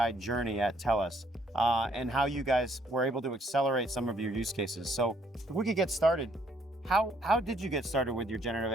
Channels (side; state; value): both; normal; correlation 0.66